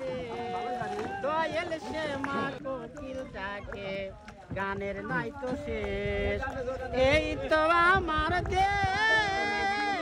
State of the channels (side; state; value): both; identical; correlation 1.00